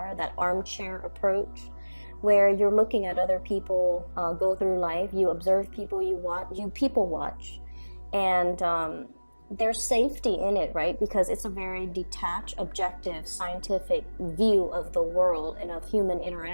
that armchair approach, where you're looking at other people go through life. You observe people, you people watch, and there's safety in it, right? Because it's a very detached, objective, scientific view of the world and of human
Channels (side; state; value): both; inverted; correlation -1.00